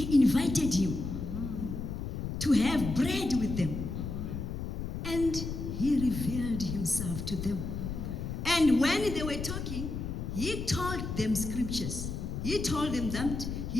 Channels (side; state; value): left; noise; rumble, 5 dB below the sound